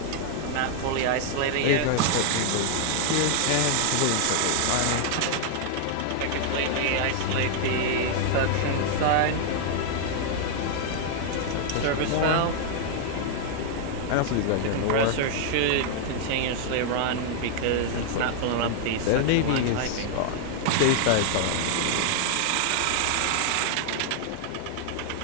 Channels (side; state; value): both; different; correlation 0.00